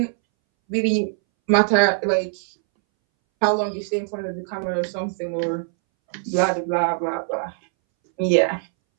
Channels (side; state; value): left; silent; 63 dB below the other